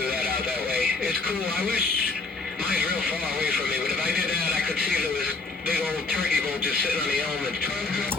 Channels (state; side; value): quieter; right; 3.8 dB